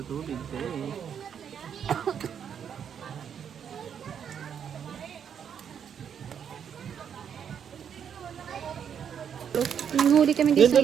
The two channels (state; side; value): quieter; left; 8.0 dB